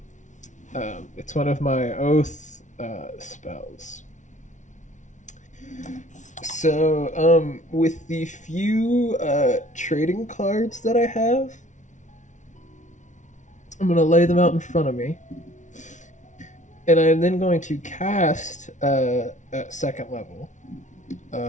It's one of my oath spells. So, with the few trading cards that I have, I'm going to lay them out in front of me. And I'm then going to cast at second level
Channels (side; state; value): right; late; 0.36 ms